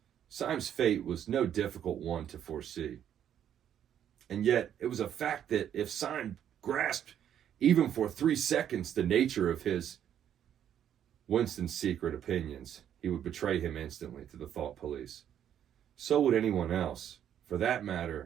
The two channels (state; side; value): quieter; left; 9.8 dB